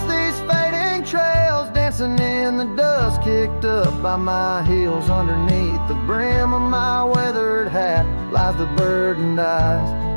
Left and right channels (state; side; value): inverted; both; correlation -1.00